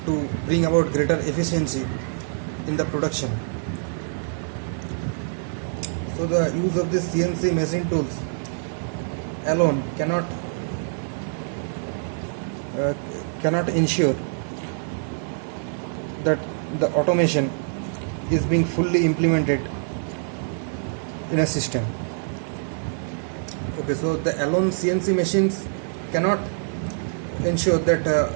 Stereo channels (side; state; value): left; silent; digital silence